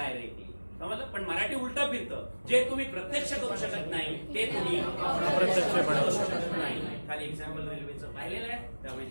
समजलं? पण मराठी उलट फिरतं. जे तुम्ही प्रत्यक्ष करू शकत नाही ते तुम्ही अप्रत्यक्ष बनवू शकत नाही. खाली एक्झाम्पल रेल्वेचं पाहिलेलं आहे. त्यामुळे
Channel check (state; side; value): inverted; both; correlation -1.00